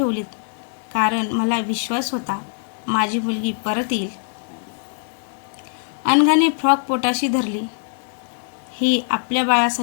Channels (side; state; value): right; silent; digital silence